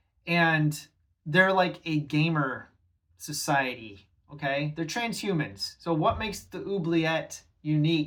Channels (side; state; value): both; identical; correlation 1.00